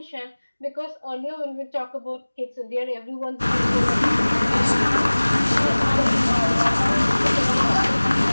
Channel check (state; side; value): inverted; both; correlation -1.00